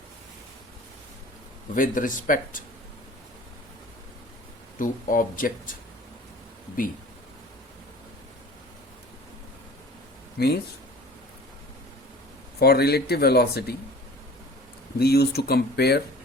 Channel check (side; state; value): both; normal; correlation 0.44